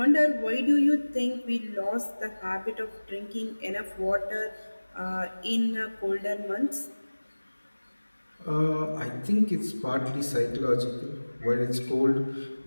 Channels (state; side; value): inverted; both; correlation -1.00